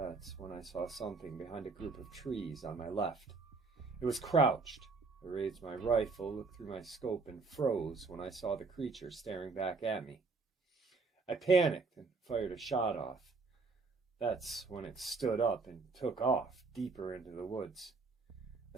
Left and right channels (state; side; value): quieter; left; 4.2 dB